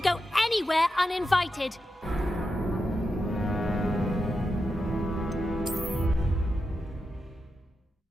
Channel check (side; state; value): both; normal; correlation 0.88